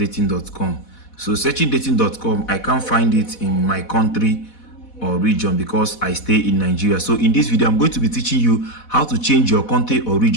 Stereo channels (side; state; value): right; late; 4.1 ms